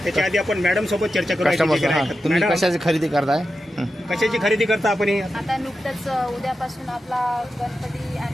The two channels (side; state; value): both; normal; correlation 0.90